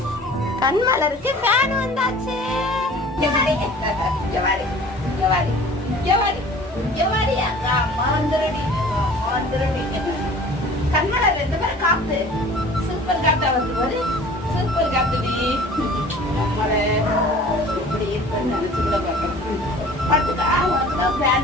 கண்மலருக்கு ஃபேன் வந்தாச்சு. கண்மலர் ரெண்டு பேரும் காத்து சூப்பர் காத்தா வந்து சூப்பர் காத்துடி. நம்மளை இப்படி இருக்குன்னு நினைச்சு கூட பார்க்கணும். பார்த்துக்கா, உனக்கு தான்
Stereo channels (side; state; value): both; normal; correlation 0.46